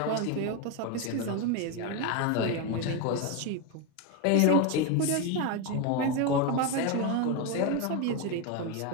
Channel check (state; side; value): different; both; correlation 0.03